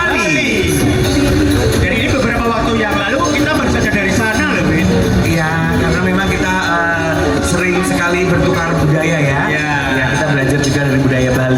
Jadi ini beberapa waktu yang lalu kita baru saja dari sana loh, Bin. Iya, karena memang kita sering sekali bertukar budaya ya. Iya. Ya, kita belajar juga dari budaya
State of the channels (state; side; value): identical; both; correlation 1.00